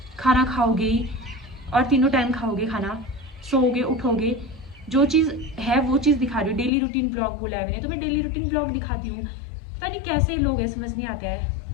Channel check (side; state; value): right; drops out; at 6.7 s